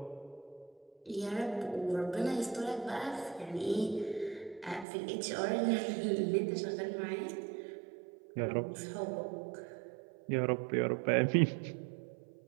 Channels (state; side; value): drops out; left; at 4.9 s